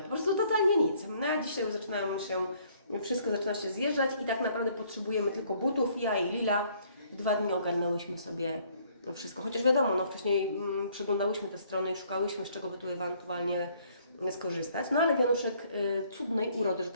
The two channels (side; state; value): both; inverted; correlation -0.63